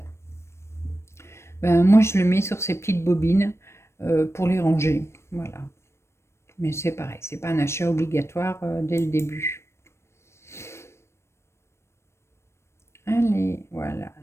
Ben, moi, je le mets sur ces petites bobines pour les ranger. Voilà. Mais c'est pareil, c'est pas un achat obligatoire dès le début. Allez, voilà,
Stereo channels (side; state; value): right; late; 0.13 ms